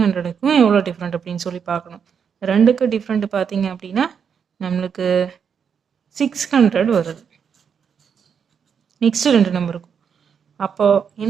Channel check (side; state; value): left; quieter; 7.0 dB